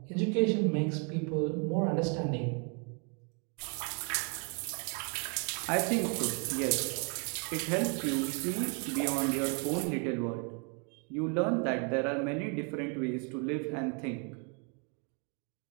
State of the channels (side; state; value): left; quieter; 37.1 dB